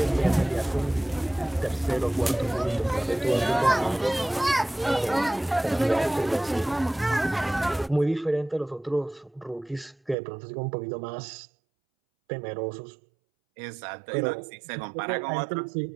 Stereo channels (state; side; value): drops out; left; at 10.2 s